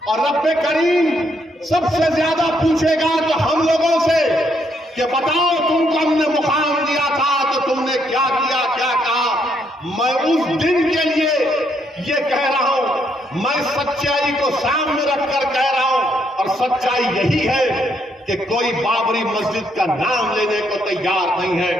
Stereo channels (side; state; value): both; normal; correlation 0.73